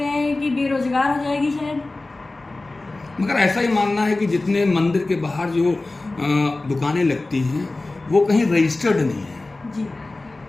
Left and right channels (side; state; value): right; quieter; 3.1 dB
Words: हैं कि बेरोजगार हो जाएगी शायद। मगर ऐसा ही मानना है कि जितने मंदिर के बाहर जो दुकानें लगती हैं वो कहीं रजिस्टर्ड नहीं है जी,